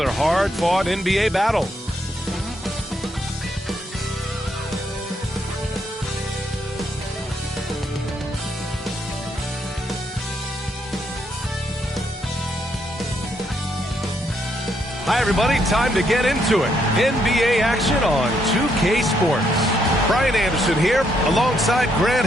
hard-fought NBA battle. Hi, everybody. Time to get into it. NBA action on 2K Sports. Brian Anderson here, alongside Grant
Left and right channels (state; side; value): normal; both; correlation 0.75